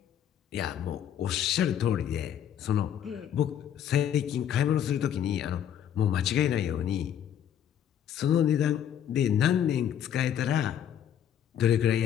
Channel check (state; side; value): quieter; right; 9.7 dB